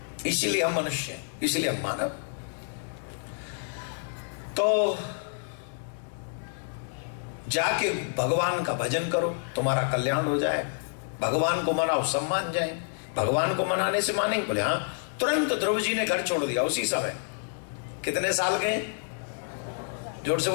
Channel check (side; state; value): right; silent; digital silence